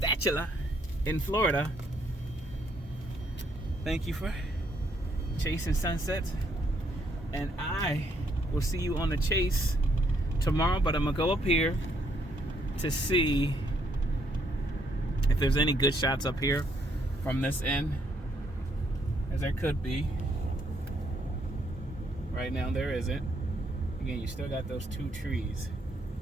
in Florida. Thank you for chasing sunsets, and I will see you on the chase tomorrow, but I'm gonna go up here to see if there's any good shots up here from this end, as there could be. Right now there isn't. Again, you still got those two trees.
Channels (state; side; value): normal; both; correlation 0.71